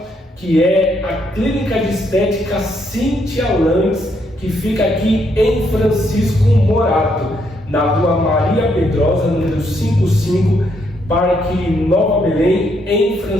que é a Clínica de Estética Cíntia Lantes, que fica aqui em Francisco Morato, na rua Maria Pedrosa, número 55, Parque Nova Belém, em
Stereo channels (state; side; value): normal; both; correlation 0.74